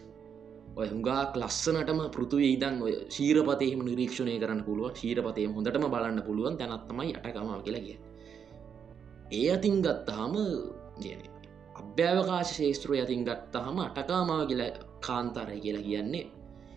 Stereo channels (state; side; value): quieter; left; 7.4 dB